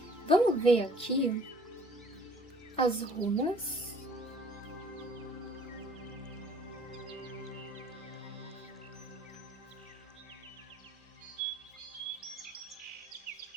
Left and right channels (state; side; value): normal; both; correlation 0.55